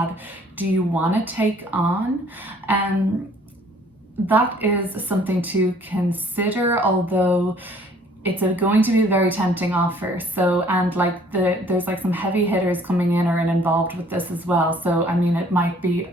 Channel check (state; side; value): normal; both; correlation 0.57